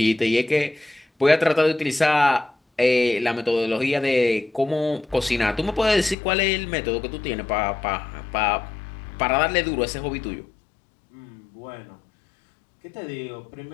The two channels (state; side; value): drops out; right; at 6.2 s